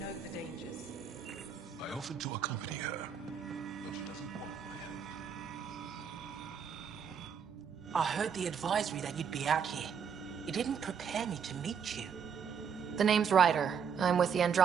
the dangers. I offered to accompany her, but she doesn't want my help. I heard the advisory that you'd be out here. It didn't prepare me to meet you. The name's Ryder. I'm with the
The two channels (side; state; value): left; quieter; 7.0 dB